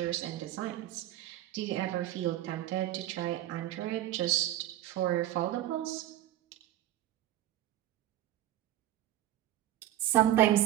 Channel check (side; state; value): left; quieter; 13.6 dB